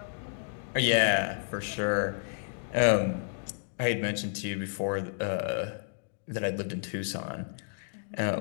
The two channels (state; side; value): silent; right; digital silence